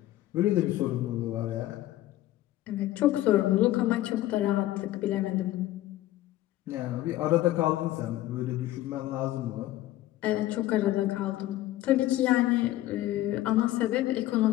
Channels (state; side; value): quieter; right; 15.2 dB